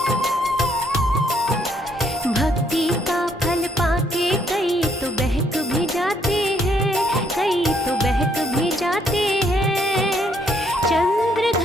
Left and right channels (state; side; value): normal; both; correlation 0.69